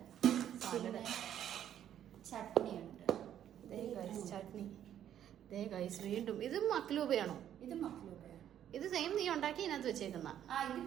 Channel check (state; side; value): quieter; left; 10.4 dB